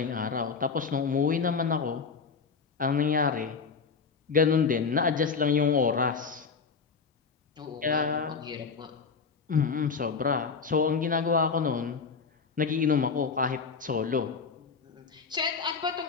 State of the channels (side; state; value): right; quieter; 5.3 dB